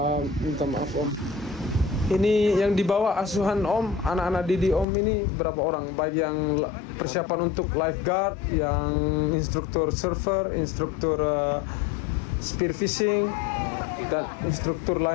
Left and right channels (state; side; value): drops out; right; at 4.9 s